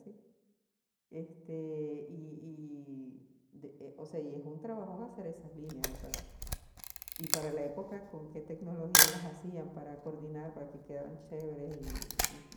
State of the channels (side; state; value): both; identical; correlation 1.00